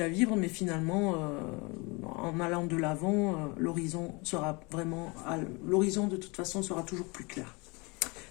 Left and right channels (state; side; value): quieter; right; 27.8 dB